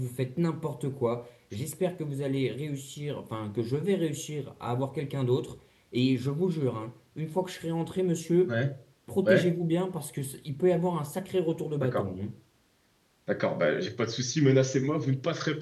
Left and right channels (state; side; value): identical; both; correlation 1.00